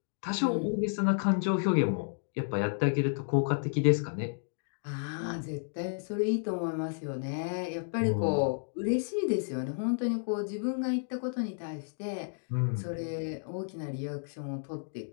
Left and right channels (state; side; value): silent; right; digital silence